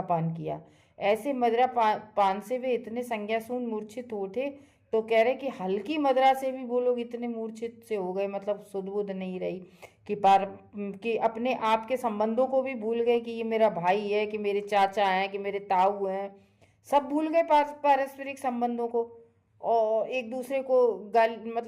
पान किया। ऐसे मदिरा पान से वे इतने संज्ञाशून्य मूर्छित उठे, तो कह रहे कि हल्की मदिरा से भी वो लोग इतने मूर्छित से हो गए, मतलब सुध बुध नहीं रही कि अपने आप के संबंधों को भी भूल गए कि ये मेरा भाई है, कि मेरे चाचा हैं, कि मेरे ताऊ हैं, सब भूल गए पारस्परिक संबंधों को, और एक दूसरे को गाली,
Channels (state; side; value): identical; both; correlation 1.00